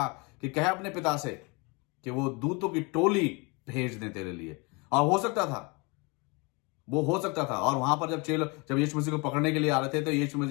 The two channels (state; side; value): quieter; right; 29.1 dB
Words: कि कह अपने पिता से कि वो दूतों की टोली भेज दें तेरे लिए. और वो हो सकता था. और वहां पर जब यीशु मसीह को पकड़ने के लिए आ रहे थे, तो यीशु मसीह,